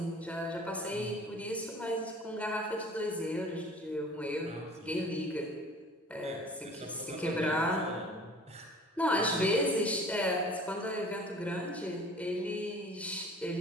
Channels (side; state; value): both; normal; correlation 0.46